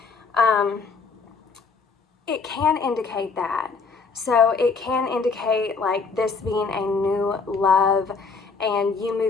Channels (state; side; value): quieter; right; 4.7 dB